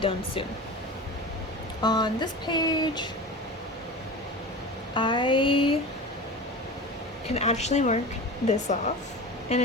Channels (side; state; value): both; normal; correlation 0.31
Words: soon. On this page, I can actually mark this off, and